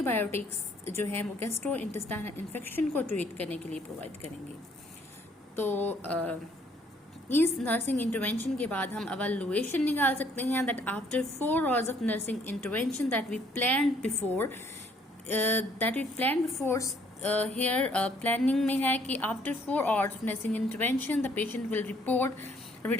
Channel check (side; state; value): both; normal; correlation 0.63